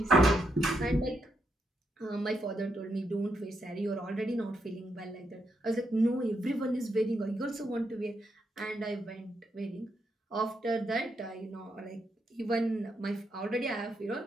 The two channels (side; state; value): both; normal; correlation 0.80